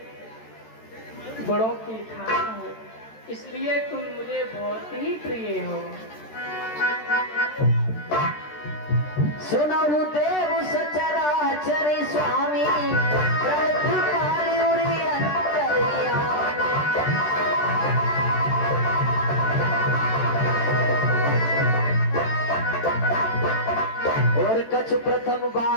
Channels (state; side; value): late; right; 13 ms